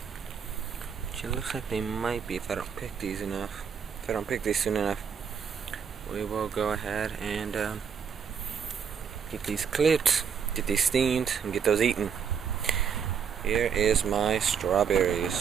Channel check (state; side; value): quieter; left; 7.1 dB